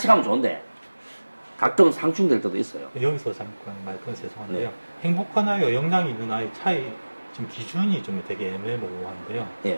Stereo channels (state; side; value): inverted; both; correlation -1.00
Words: 가면 좋은데 가끔 상충될 때도 있어요. 여기서 잠깐 말 끊어서 죄송한데요. 네. 행복한 아이와 역량이 있는 아이 차이 지금 기준이 좀 되게 애매모호한데요.